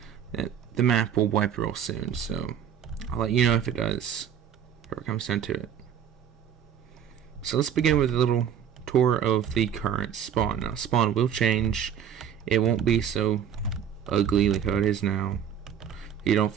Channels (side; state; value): left; quieter; 8.7 dB